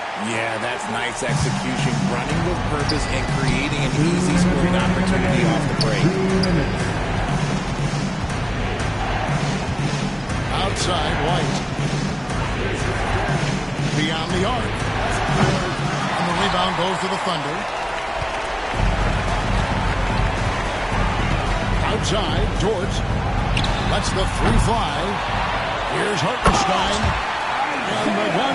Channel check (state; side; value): identical; both; correlation 1.00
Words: Yeah, that's nice execution. Running with purpose and creating an easy scoring opportunity off the break. Outside, White. Beyond the arc. And the rebound goes to the Thunder. Outside, George. Lets the three fly. Here's Hartenstein. And the